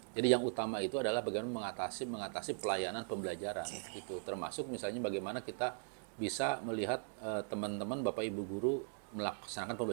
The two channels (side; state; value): left; silent; digital silence